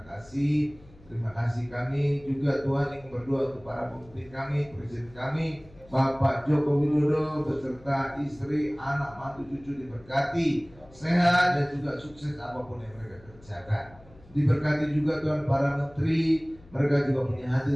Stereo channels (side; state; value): left; noise; hum, 25 dB below the sound